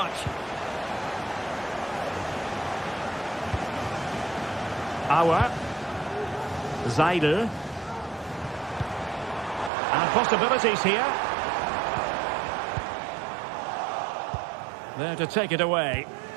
Auer. Seidel. And possibilities here. There to take it away.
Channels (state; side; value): drops out; left; at 9.7 s